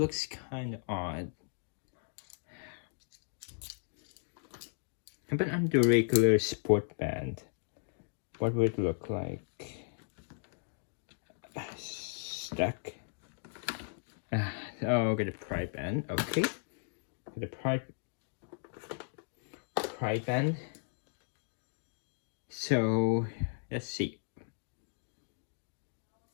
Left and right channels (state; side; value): silent; right; digital silence